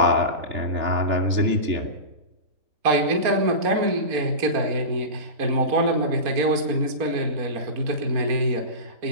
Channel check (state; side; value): late; left; 4.3 ms